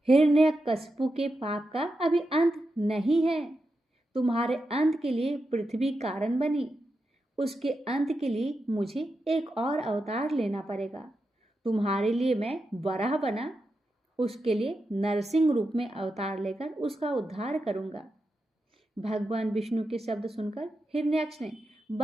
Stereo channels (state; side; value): normal; both; correlation 0.88